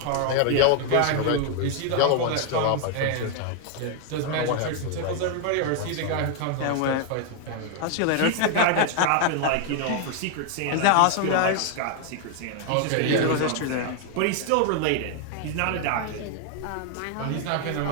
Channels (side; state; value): both; different; correlation 0.00